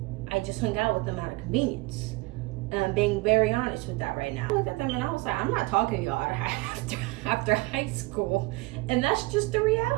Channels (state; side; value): quieter; left; 23.0 dB